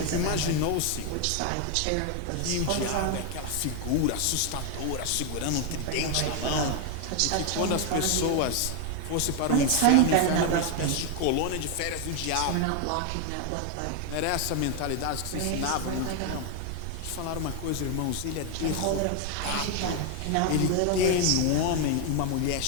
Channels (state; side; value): different; both; correlation 0.01